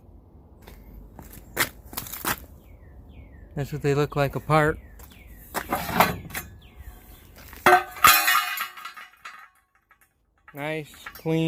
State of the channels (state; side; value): identical; both; correlation 1.00